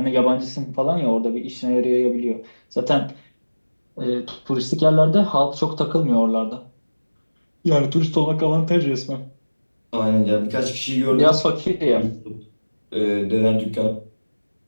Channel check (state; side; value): inverted; both; correlation -1.00